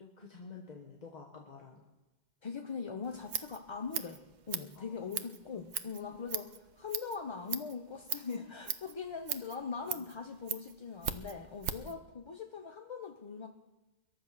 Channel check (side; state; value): left; late; 2.1 ms